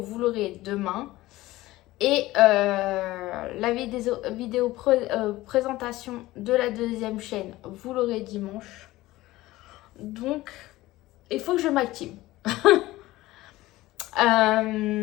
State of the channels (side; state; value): right; quieter; 17.6 dB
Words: l'aurez demain. Et la vidéo présentation de la deuxième chaîne, vous l'aurez dimanche. Donc, il faut que je m'active.